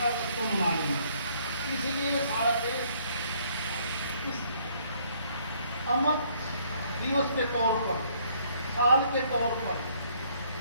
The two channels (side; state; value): both; inverted; correlation -0.64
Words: अगस्त को मनाएंगे, इसलिए सारा देश इस अमर दिवस के तौर पर, साल के तौर पर